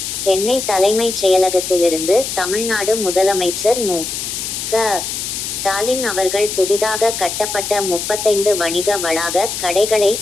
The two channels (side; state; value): left; noise; hiss, 5 dB below the sound